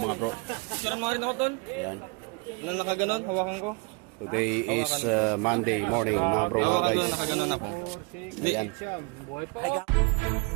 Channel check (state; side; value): quieter; left; 32.0 dB